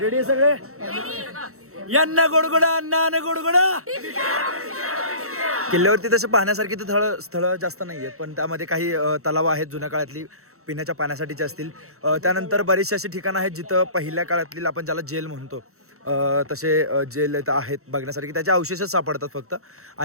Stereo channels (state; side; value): late; left; 0.64 ms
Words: रेडी सगळे? यांना गोडगोडा अण्णा गोडगोडा. किल्ल्यावरती तसं पाहण्यासारखी तर स्थळं जास्त नाही आहेत, पण त्यामध्ये काही तलाव आहेत जुन्या काळातली पिण्याच्या पाण्यासाठीचे असतील. त्यानंतर बरीचशी अशी ठिकाणं आहेत जिथं पहिल्या काळातली आपण ज्याला जेल म्हणतो तसे जेल इथं आहेत बघण्यासारखी. त्याचे अवशेषच सापडतात फक्त.